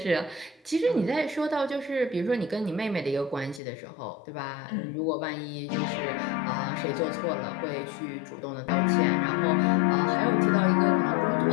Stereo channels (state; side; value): drops out; right; at 3.6 s